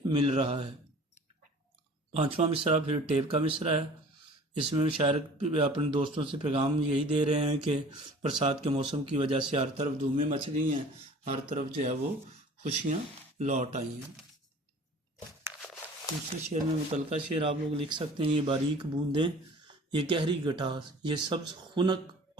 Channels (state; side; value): normal; both; correlation 0.46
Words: مل رہا ہے۔ پانچواں مصرع پھر ٹیپ کا مصرع ہے۔ اس میں شاعر اپنے دوستوں سے پیغام یہی دے رہے ہیں کہ برسات کے موسم کی وجہ سے ہر طرف دھومیں مچ گئی ہیں، ہر طرف جو ہے وہ خوشیاں لوٹ آئی ہیں۔ دوسرے شعر میں متعلقہ شعر آپ لوگ لکھ سکتے ہیں۔ یہ باریک بوندیں، یہ گہری گٹاس، یہ سبز خنک